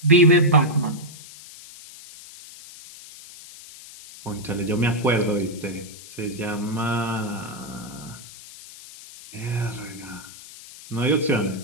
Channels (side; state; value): left; noise; hiss, 17 dB below the sound